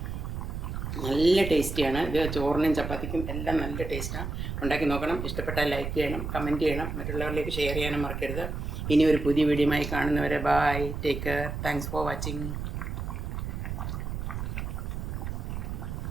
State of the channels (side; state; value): right; noise; rumble, 4 dB below the sound